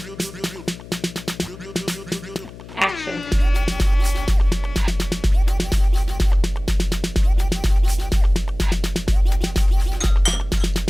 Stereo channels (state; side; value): noise; left; hum, 17 dB below the sound